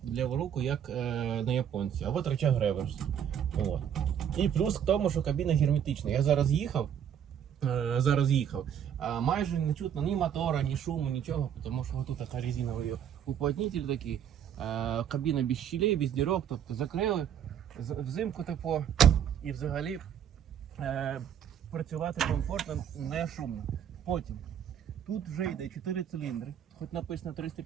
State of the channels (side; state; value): left; quieter; 9.0 dB